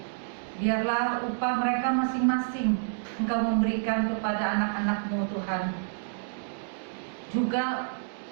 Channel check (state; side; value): silent; left; digital silence